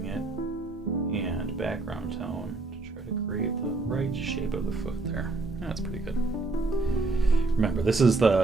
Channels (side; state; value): left; quieter; 3.4 dB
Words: it, and background tone to try to create the right shape of the foot there. That's pretty good. Remember, this is